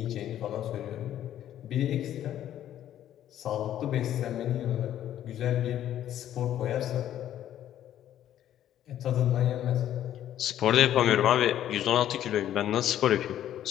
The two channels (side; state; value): right; quieter; 11.5 dB